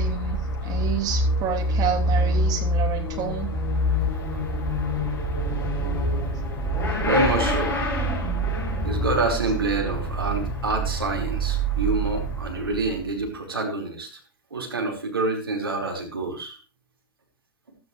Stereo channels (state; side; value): normal; both; correlation 0.19